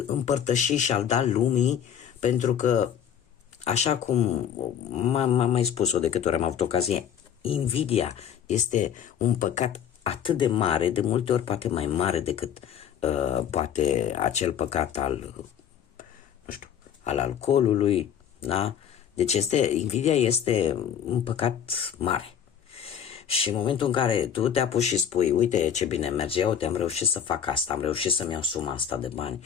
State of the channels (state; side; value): quieter; right; 8.8 dB